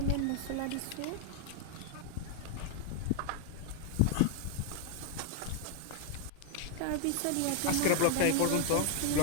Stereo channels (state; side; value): different; both; correlation 0.00